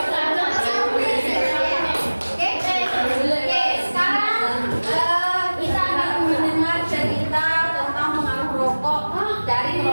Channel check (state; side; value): inverted; both; correlation -1.00